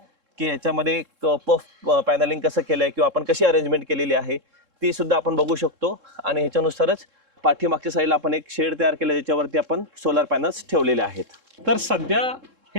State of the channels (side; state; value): left; late; 3.7 ms